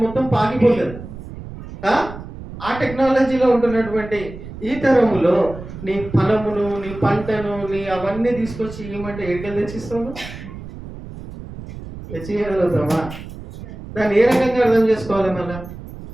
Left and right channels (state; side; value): noise; right; rumble, 13 dB below the sound